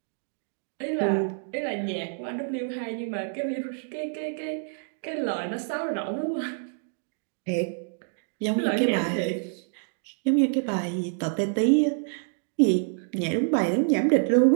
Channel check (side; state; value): left; silent; digital silence